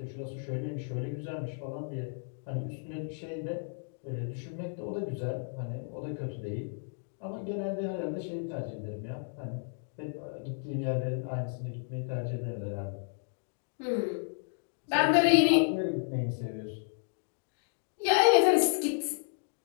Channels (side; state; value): right; silent; digital silence